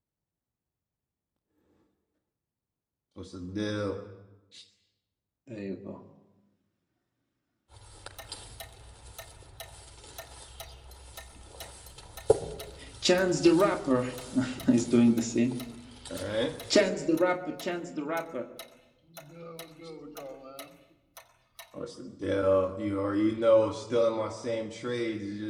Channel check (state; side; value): identical; both; correlation 1.00